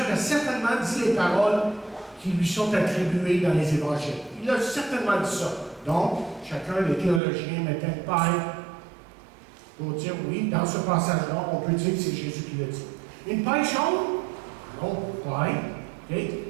certainement dit les paroles qui lui sont attribuées dans les Évangiles. Il a certainement dit ça. Donc, chacun des théologiens mettait une paille pour dire, oui, dans ce passage-là, on peut dire que c'est Jésus qui l'a dit. Une paille jaune, non, paille, okay,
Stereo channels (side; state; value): left; drops out; at 7.2 s